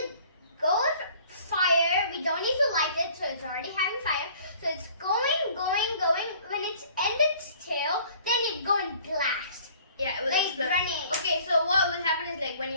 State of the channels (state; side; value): inverted; both; correlation -0.53